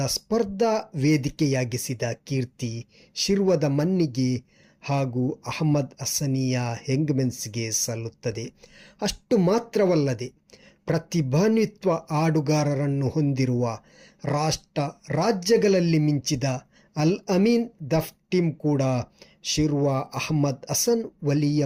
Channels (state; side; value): identical; both; correlation 1.00